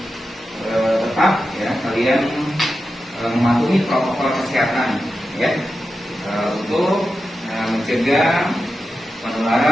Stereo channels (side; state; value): both; normal; correlation 0.91